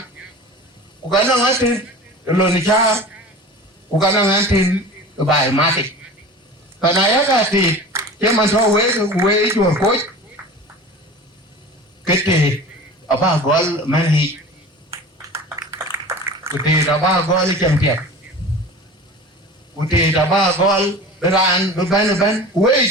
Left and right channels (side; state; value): both; normal; correlation 0.37